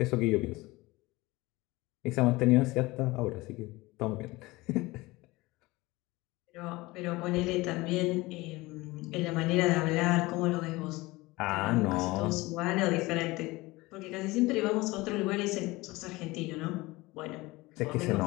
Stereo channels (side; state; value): right; quieter; 21.2 dB